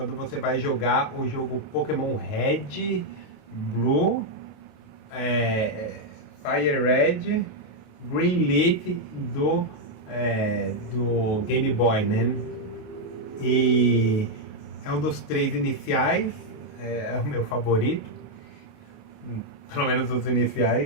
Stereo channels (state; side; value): late; right; 28 ms